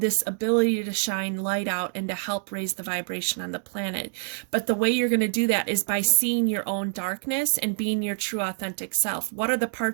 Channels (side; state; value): left; silent; digital silence